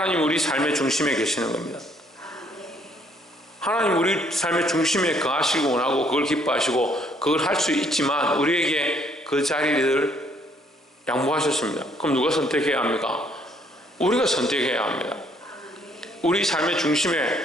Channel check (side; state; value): both; normal; correlation 0.65